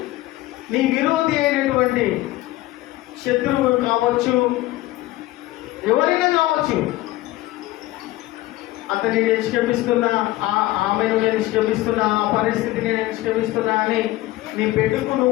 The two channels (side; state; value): right; quieter; 17.3 dB